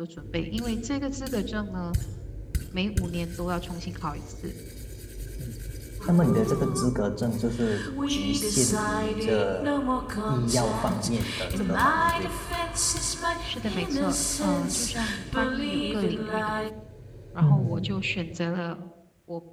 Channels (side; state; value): both; identical; correlation 1.00